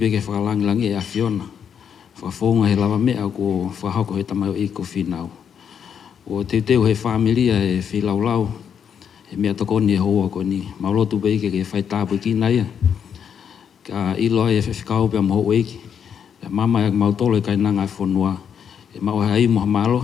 whakalangilangi e awhiona. Whakafonga he lava mea ko whahako he tamai o iko Finau. O teu he familia e whilaulau, he mea tokoni e hoa koni. Mau lotu beke ke whai tāpui ki naia. Ka ilo e whiwhikau pia maho eiki. Pia mama e mau tolo e kai nanga e whonua. E mau hai moha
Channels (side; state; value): right; quieter; 7.8 dB